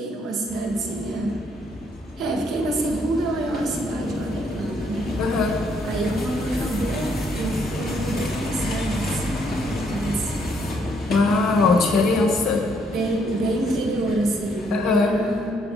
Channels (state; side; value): normal; both; correlation 0.70